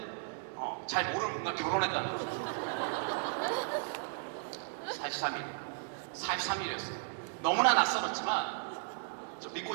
잘 모르는 분과 결혼했다는 거. 43일. 43일이었어요. 너무나 낯설었지만 저 믿고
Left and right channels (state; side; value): silent; left; 54 dB below the other